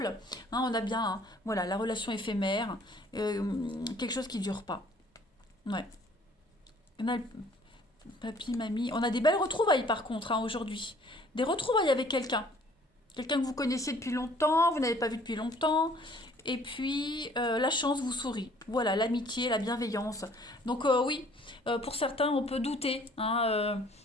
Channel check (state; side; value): normal; both; correlation 0.57